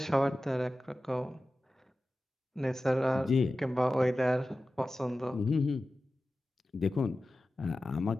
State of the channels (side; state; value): both; normal; correlation 0.95